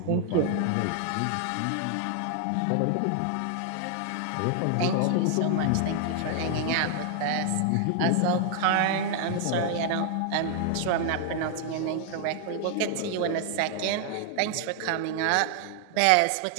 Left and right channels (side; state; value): both; different; correlation 0.00